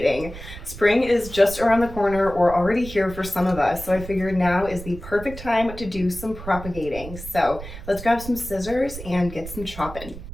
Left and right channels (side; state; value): right; noise; rumble, 12 dB below the sound